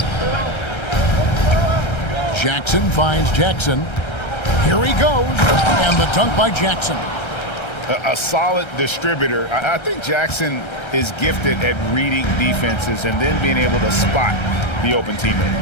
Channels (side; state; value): right; late; 1.3 ms